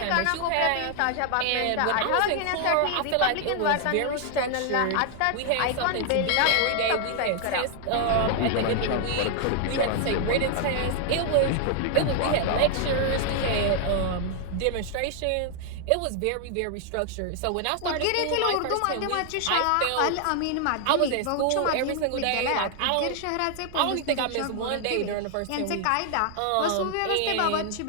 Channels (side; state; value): both; different; correlation 0.00